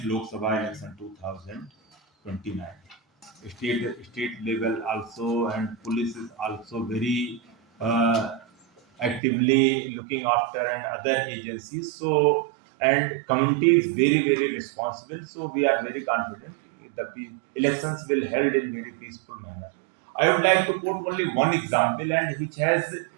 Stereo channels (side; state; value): left; drops out; at 9.2 s